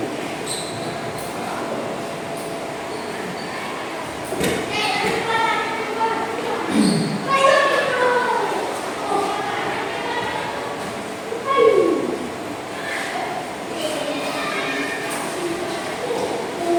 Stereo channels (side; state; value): both; identical; correlation 1.00